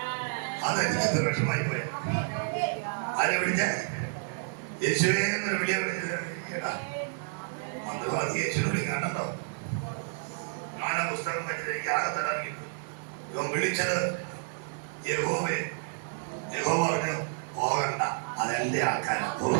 അതെനിക്ക് വിഷമായി പോയി. ആരെ വിളിച്ച? യേശുവേ എന്നൊരു വിളിയ. മന്ത്രവാദി യേശുവിനെ വിളിക്കാണ്ടോ? ഞാൻ ആ പുസ്തകം വെച്ചിട്ട് എനിക്ക് ആകത്തല്ല. ഇവൻ വിളിച്ചത് യഹോവേ. യഹോവ പറഞ്ഞു പോകണ്ട, അതെന്റെ ആൾക്കാരാ.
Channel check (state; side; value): silent; left; digital silence